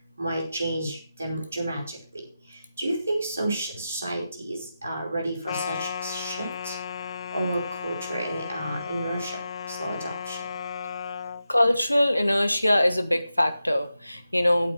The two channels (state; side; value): inverted; both; correlation -0.90